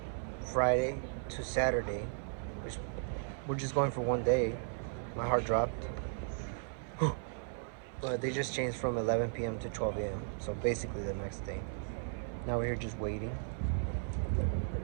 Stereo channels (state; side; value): silent; left; 54 dB below the other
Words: Friday to Saturday, which we're just going for one day. My heart dropped. But they just changed from 11 p.m. to 12 a.m. So basically the next day. Now we're here just waiting.